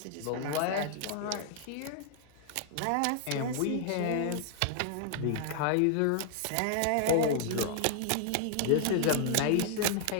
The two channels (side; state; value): both; different; correlation 0.00